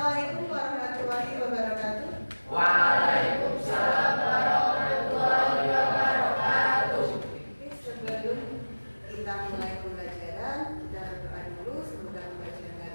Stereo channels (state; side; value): inverted; both; correlation -1.00